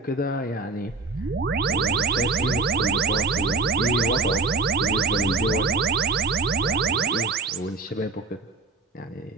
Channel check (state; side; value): quieter; left; 3.8 dB